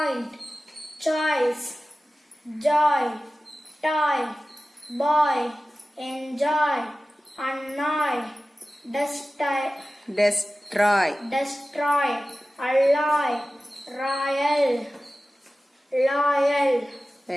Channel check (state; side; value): normal; both; correlation 0.96